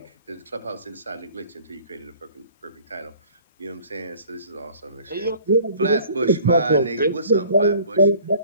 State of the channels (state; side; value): inverted; both; correlation -0.51